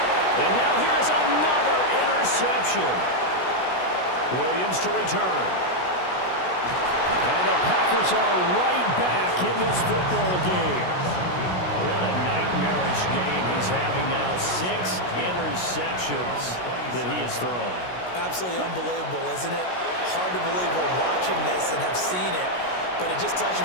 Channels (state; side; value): late; right; 16 ms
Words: And now here's another interception. Williams to return. And the Packers are right back in this football game. What a nightmarish game he's having now. 6 interceptions that he has thrown. Absolutely unbelievable, isn't it? Hard to believe we're watching this and have seen it, but it just tells you